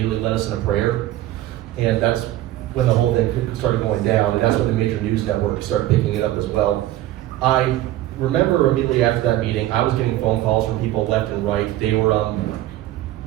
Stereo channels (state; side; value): quieter; left; 14.7 dB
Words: led us in a prayer, and that's when the whole thing started going down, and that's when the major news networks started picking it up as well. I remember immediately after that meeting, I was getting phone calls from people left and right. They